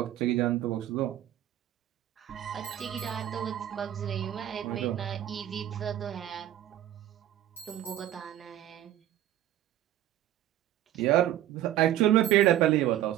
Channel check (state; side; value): quieter; left; 12.6 dB